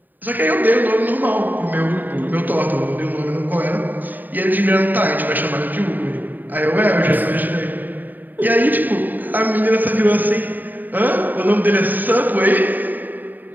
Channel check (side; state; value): left; late; 0.088 ms